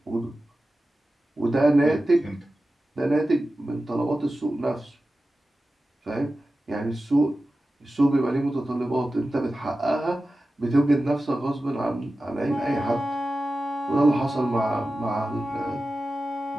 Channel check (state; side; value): normal; both; correlation 0.94